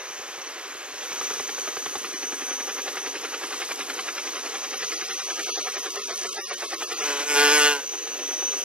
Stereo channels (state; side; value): late; left; 0.053 ms